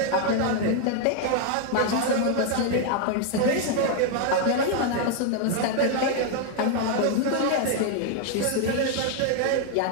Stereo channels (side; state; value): both; different; correlation 0.00